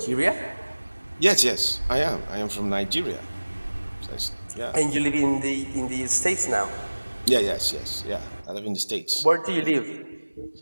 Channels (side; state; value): both; inverted; correlation -1.00